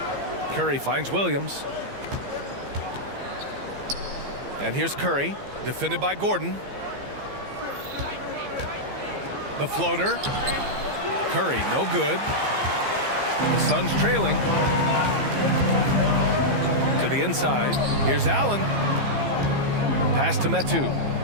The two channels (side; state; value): left; late; 15 ms